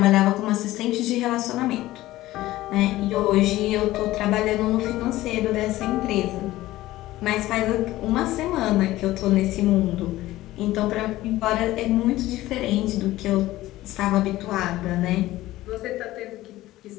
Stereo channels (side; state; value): right; quieter; 16.4 dB